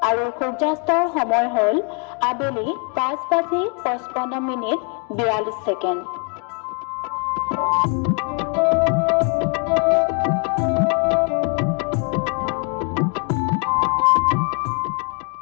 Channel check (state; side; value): quieter; right; 36.4 dB